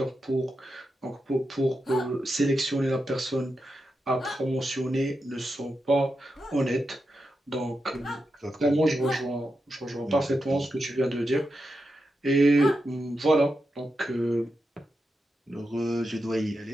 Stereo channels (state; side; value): normal; both; correlation 0.88